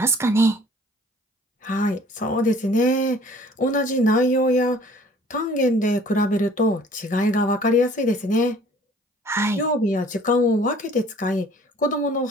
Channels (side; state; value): both; normal; correlation 0.53